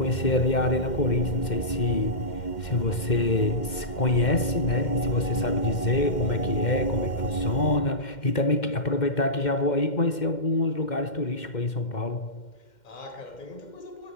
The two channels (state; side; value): late; right; 2.1 ms